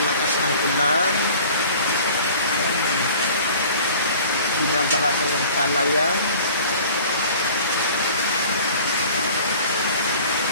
ng ulan. Ayan, binabaha na yung palayan.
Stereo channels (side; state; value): both; inverted; correlation -0.46